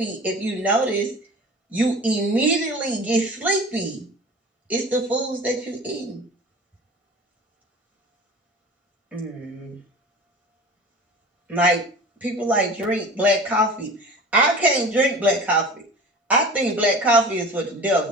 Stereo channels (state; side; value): normal; both; correlation 0.38